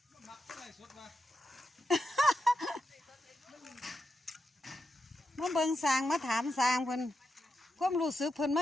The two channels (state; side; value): normal; both; correlation 0.87